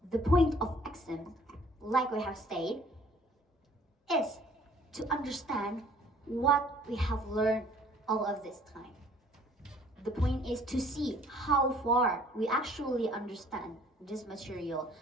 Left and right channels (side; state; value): both; normal; correlation 0.56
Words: the point of exam, like we have stated, is to understand what we have learned all of this time. The point is to see how far we actually understand this material,